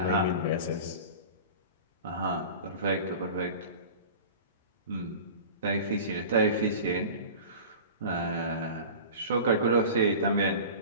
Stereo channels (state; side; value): inverted; both; correlation -0.37